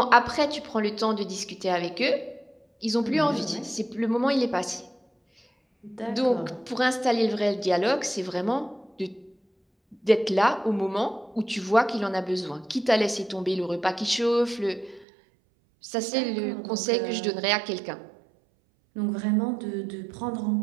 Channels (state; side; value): drops out; left; at 15.1 s